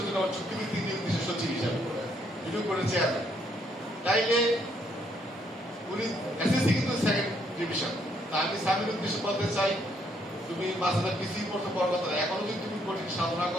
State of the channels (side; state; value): both; normal; correlation 0.71